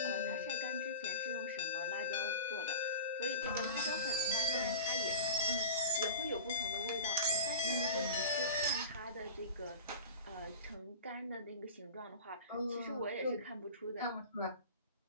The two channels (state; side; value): inverted; both; correlation -0.34